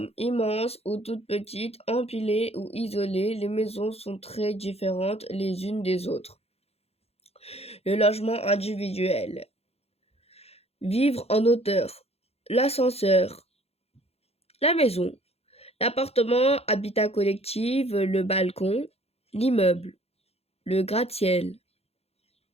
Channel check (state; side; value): late; right; 0.29 ms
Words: immenses ou toutes petites, empilées ou isolées, les maisons sont très différentes les unes des autres. Le logement individuel. Vivre en hauteur. L'ascenseur. La maison. L'appartement, habitat collectif, le balcon. L'immeuble. Le gratte-ciel.